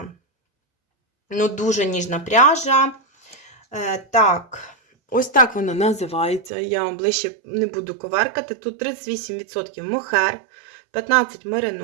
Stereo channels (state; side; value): drops out; left; at 6.5 s